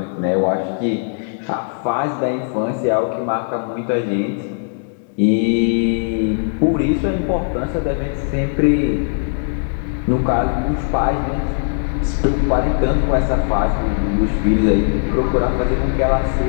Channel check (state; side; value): silent; right; 66 dB below the other